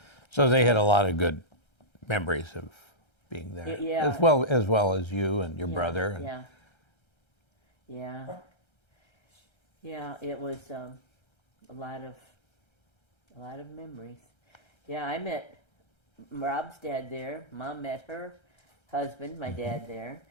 So they had a lot of good memories of being there. Yeah. As well as you and your brother. And... Yeah. Yeah, it was a lot of memories. Yeah, I met Rob's dad there. Mom met her husband, my dad, there.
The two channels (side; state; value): right; late; 1.3 ms